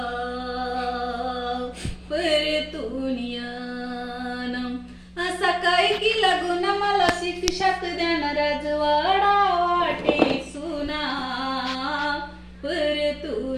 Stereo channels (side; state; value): both; identical; correlation 1.00